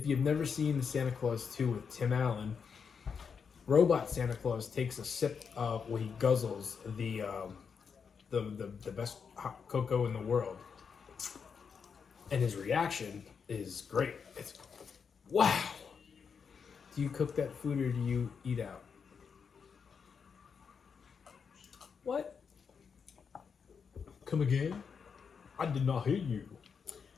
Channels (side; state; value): right; quieter; 6.2 dB